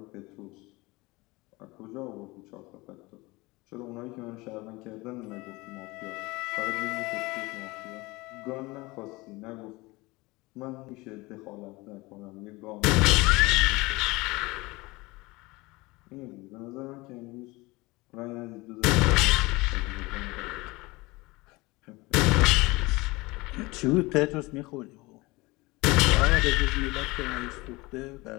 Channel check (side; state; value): right; quieter; 22.7 dB